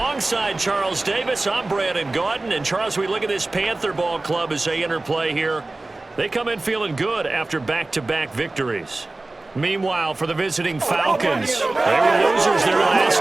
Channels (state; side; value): quieter; left; 3.0 dB